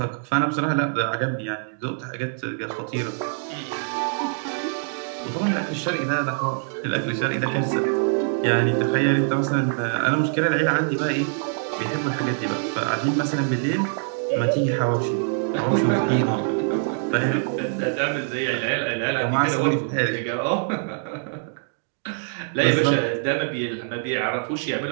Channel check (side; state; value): left; silent; digital silence